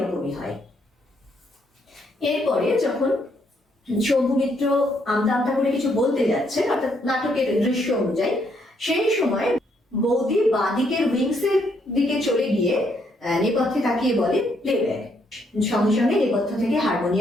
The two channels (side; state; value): both; normal; correlation 0.73